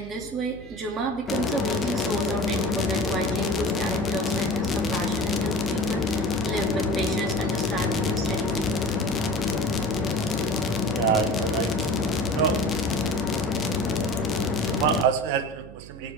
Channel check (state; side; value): noise; right; hum, 16 dB below the sound